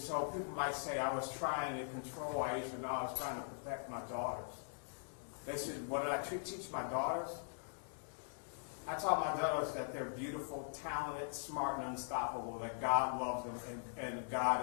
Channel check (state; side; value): silent; right; digital silence